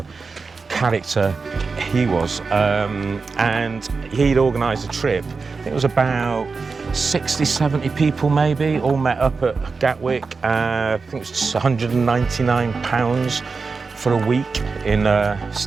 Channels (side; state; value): left; quieter; 4.5 dB